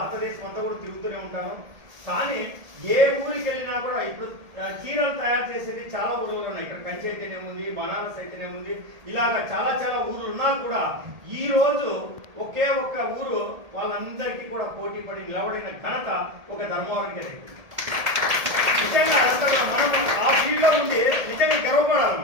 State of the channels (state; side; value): late; left; 1.7 ms